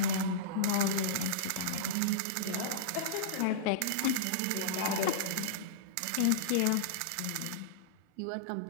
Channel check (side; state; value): both; different; correlation -0.03